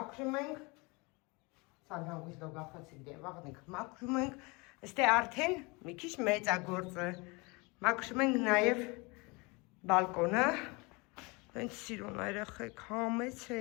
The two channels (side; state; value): right; quieter; 27.4 dB